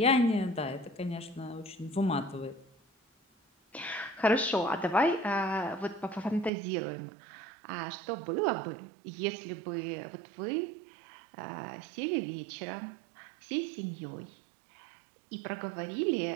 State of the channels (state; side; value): drops out; left; at 6.5 s